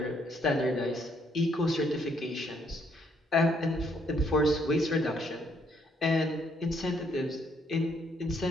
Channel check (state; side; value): normal; both; correlation 0.69